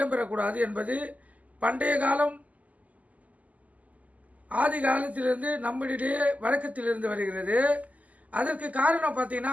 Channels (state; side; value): late; left; 0.075 ms